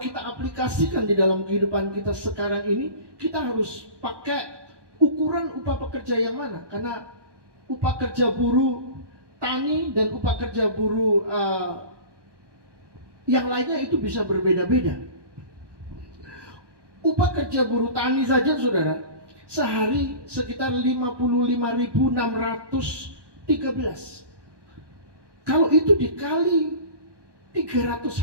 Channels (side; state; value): left; late; 1.1 ms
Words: aplikasikan di dalam kehidupan kita sekarang ini, kita harus pakai ukuran upah pekerja yang mana? Karena upah kerja buruh tani dan upah kerja buruh yang lainnya itu bisa berbeda-beda. Upah kerja buruh tani saja, saudara, sehari sekitar 55.613. Kalau itu dikali 300